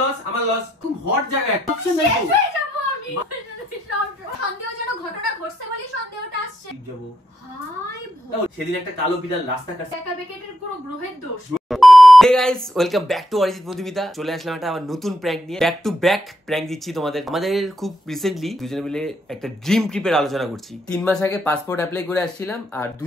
লস, আমার লস। খুব হট জায়গা একটা অপশন নাই তো। সন্দেহজনক ঘটনা ঘটছে বলি সন্দেহটা আসছে। যাব হাই সেদিন একটা কালো বিড়াল রাস্তা কাটছে। একা বেকেটের পুরো গ্রহের দোষ। Hey guys, welcome back to Arijit Madhumita. চলে আসলাম একটা আবার নতুন প্র্যাঙ্ক নিয়ে। ব্যাক টু ব্যাক প্র্যাঙ্ক দিচ্ছি তোমাদের। আমাদের খুব রিসেন্টলি দুজনে মিলে একটা ড্রিম ট্রিপের আলোচনা করছি। 3 মাস আগে পাসপোর্ট অ্যাপ্লাই করে আসছিলাম, আর 2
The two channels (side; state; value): both; normal; correlation 0.79